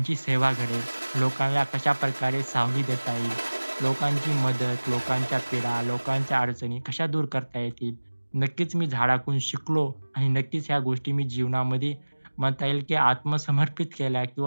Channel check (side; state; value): both; inverted; correlation -1.00